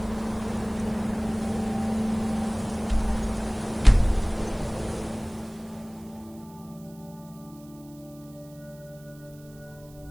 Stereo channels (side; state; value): right; noise; hiss, 25 dB below the sound